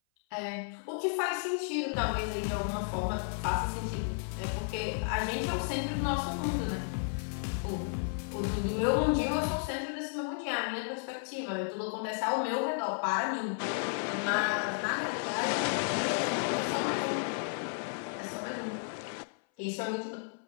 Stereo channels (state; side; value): silent; right; 56 dB below the other